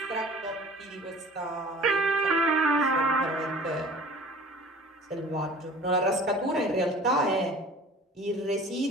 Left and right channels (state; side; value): normal; both; correlation 0.45